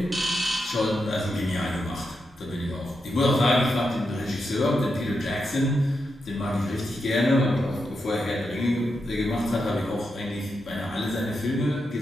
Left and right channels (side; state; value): both; normal; correlation 0.85